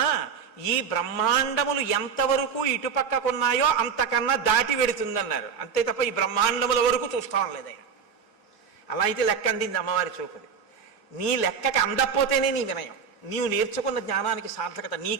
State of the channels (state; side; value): quieter; left; 6.4 dB